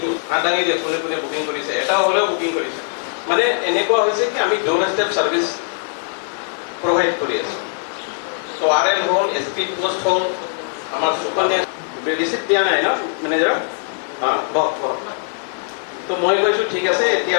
আদাঙি যে কোনে বুকিং কৰিছে এটা হ'লেও বুকিং কৰিছে মানে এনেকুৱা হৈছে কি আমি ডোৰ ষ্টেপ সাৰ্ভিস প্ৰোভাইড কৰি আছো তো আৰএল হ'ল এছপি পোষ্ট হ'ল আমাৰ সুকন্যা ৰিসিপ্ট দিয়া নাই ন মেনেজাৰ বক তো মই কৈছো ঠিক আছে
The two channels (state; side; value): silent; right; digital silence